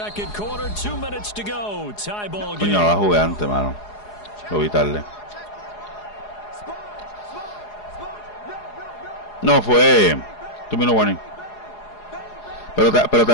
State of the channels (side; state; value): right; late; 4.8 ms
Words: quarter, 2 minutes to go. Tie ball game. Coño, la jugué antes, mano. Lo vi tarde. No, fue 2 minute warning. Pero